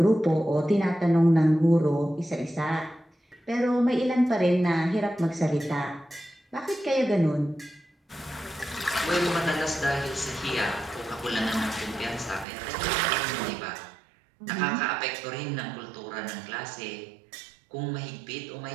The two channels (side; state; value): left; drops out; at 12.5 s